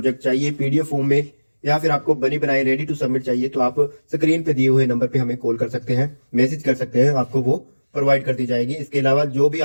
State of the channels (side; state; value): both; inverted; correlation -1.00